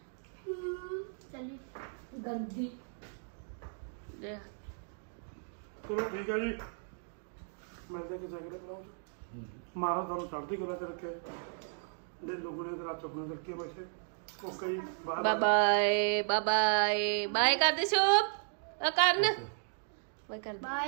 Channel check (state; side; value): silent; left; digital silence